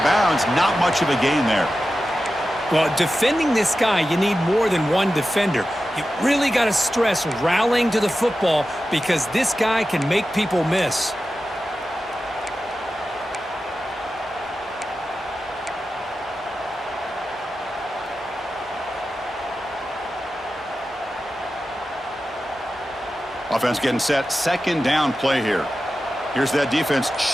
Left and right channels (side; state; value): both; normal; correlation 0.93